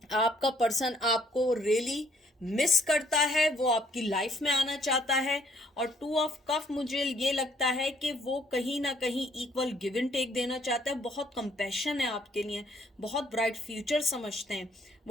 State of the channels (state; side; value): normal; both; correlation 0.65